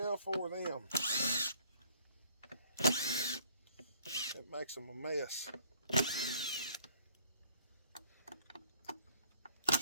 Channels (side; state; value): both; inverted; correlation -0.58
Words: for them. It makes them a mess.